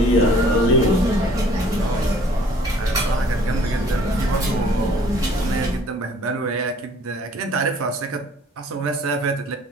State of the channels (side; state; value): both; normal; correlation 0.55